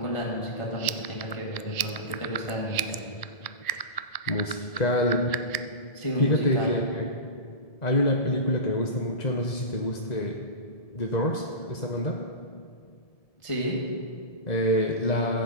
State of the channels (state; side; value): late; right; 1.7 ms